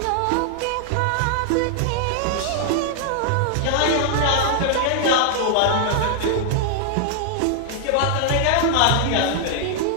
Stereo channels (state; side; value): different; both; correlation 0.00